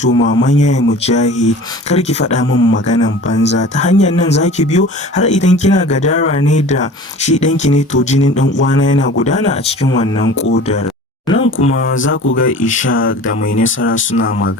maman Yaya Mujahid, kar ki faɗa min maganan banza, ta hanyar nan zaki biyo, har idan kina gadara ne da shi ɗanki ne to jinin ɗan uwana yana gudana a cikin wannan ƙodar. Nan kuma za ku ga Ishaq da Mai Nasara suna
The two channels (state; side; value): normal; both; correlation 0.41